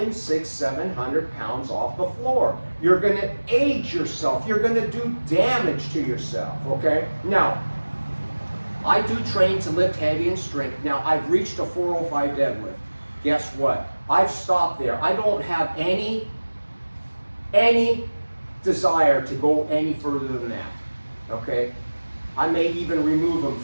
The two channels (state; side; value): inverted; both; correlation -1.00